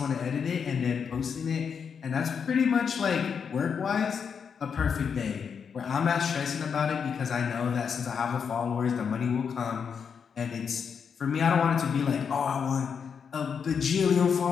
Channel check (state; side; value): quieter; right; 6.6 dB